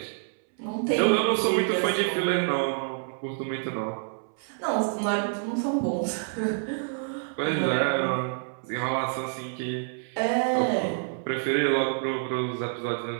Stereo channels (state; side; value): silent; left; 60 dB below the other